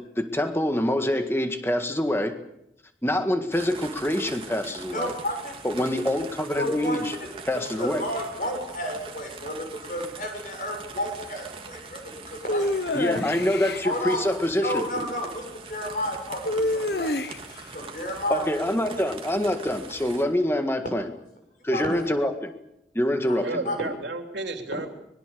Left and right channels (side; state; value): both; normal; correlation 0.59